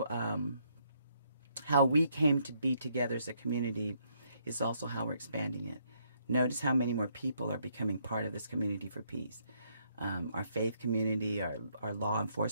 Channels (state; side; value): inverted; both; correlation -0.72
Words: how we came to be together as a community is also how we're expanding it. Notice how many more people are becoming part of this community for peace. Our faith community, our law